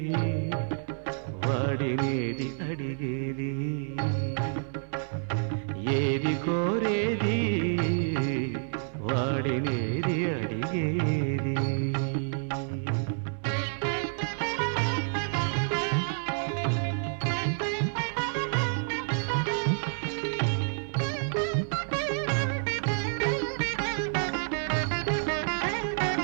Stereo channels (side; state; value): left; silent; 59 dB below the other